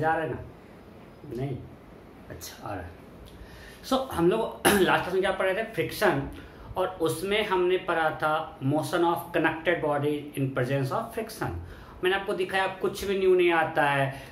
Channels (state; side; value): identical; both; correlation 1.00